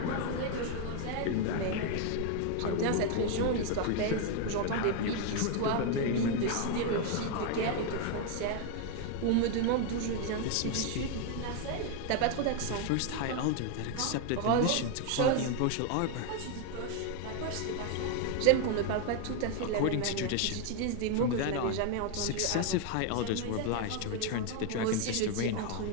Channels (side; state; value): both; different; correlation 0.01